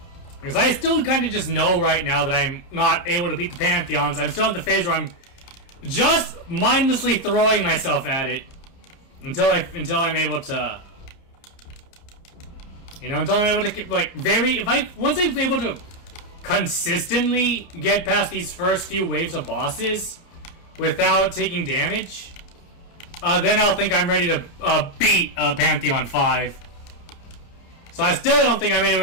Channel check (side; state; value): right; late; 30 ms